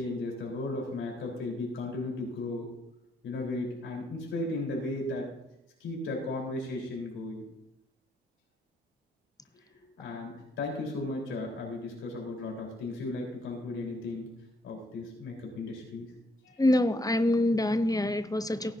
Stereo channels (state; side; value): normal; both; correlation 0.71